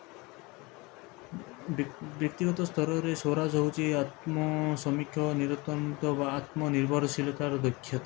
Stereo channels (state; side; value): quieter; right; 25.1 dB